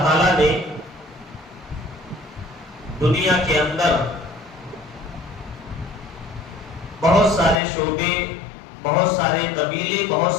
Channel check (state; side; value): drops out; right; at 7.6 s